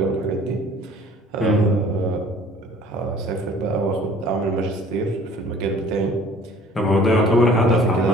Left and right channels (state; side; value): normal; both; correlation 0.51